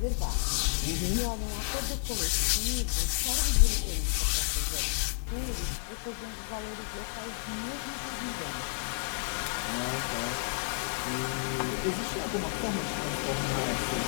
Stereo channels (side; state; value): right; silent; 57 dB below the other